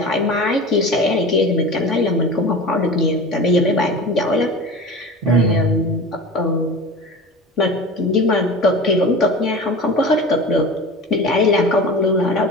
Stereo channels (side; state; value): both; normal; correlation 0.34